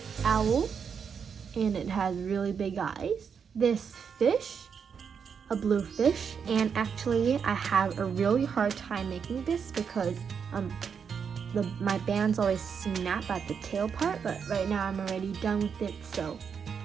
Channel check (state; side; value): quieter; left; 6.7 dB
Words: Owl, and it has really big eyes. This fish, a blue fish, and actually I have a really hard time making this because my bands always snap at the tail part, but right now I'm already done with it, so